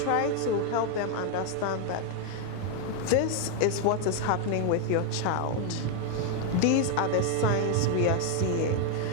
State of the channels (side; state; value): both; different; correlation 0.00